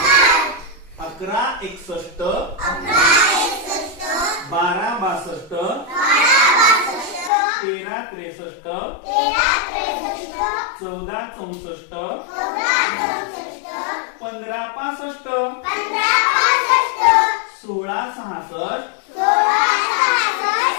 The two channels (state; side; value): drops out; right; at 7.3 s